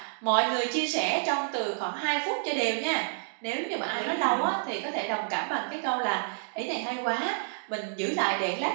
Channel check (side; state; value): left; silent; digital silence